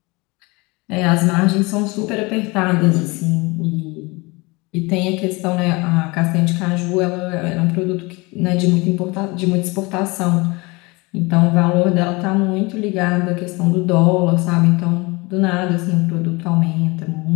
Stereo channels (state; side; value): quieter; right; 25.4 dB